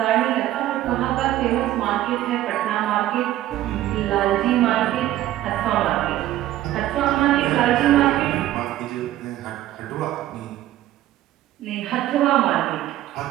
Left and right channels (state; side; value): quieter; left; 14.1 dB